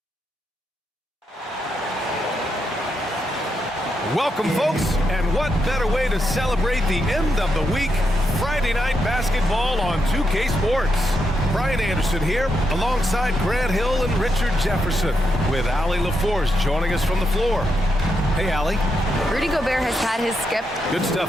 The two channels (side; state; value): both; normal; correlation 0.82